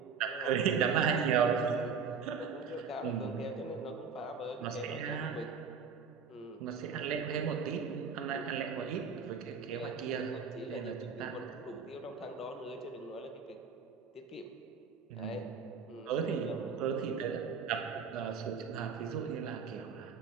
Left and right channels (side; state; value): left; quieter; 6.0 dB